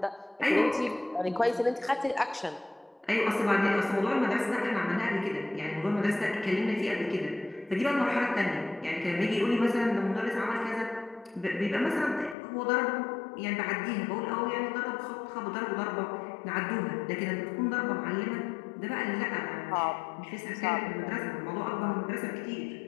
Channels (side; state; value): right; drops out; at 12.4 s